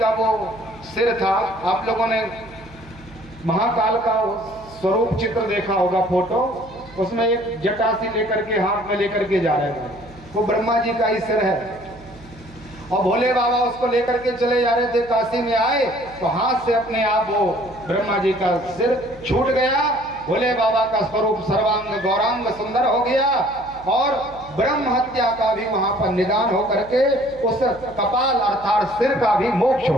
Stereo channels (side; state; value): right; noise; hum, 21 dB below the sound